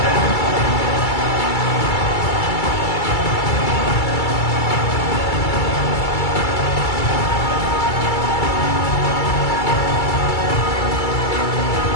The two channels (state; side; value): late; right; 2.3 ms